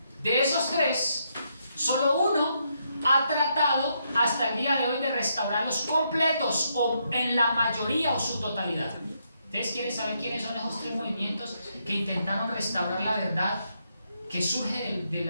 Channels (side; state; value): both; inverted; correlation -0.78